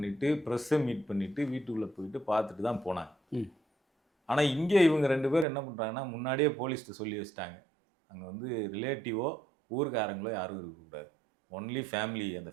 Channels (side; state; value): left; drops out; at 5.5 s